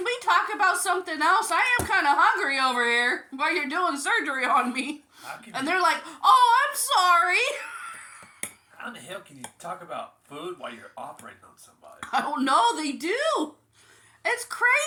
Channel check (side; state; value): both; identical; correlation 1.00